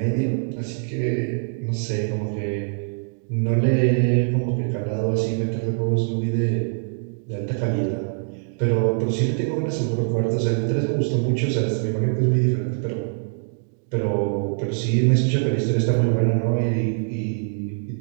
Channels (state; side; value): silent; left; digital silence